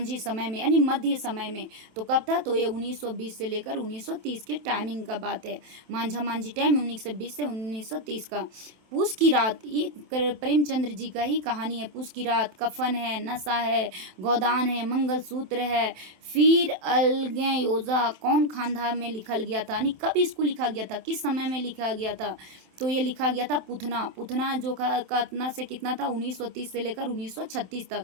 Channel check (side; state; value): left; late; 27 ms